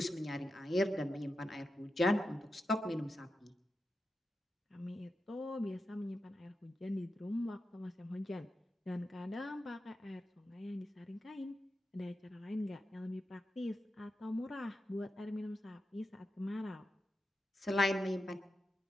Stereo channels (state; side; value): normal; both; correlation 0.89